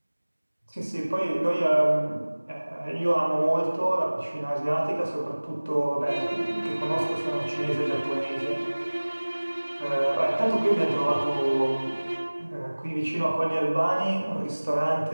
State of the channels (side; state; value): both; inverted; correlation -1.00